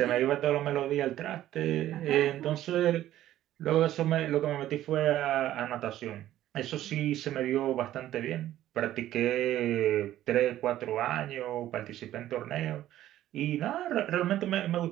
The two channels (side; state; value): left; quieter; 13.2 dB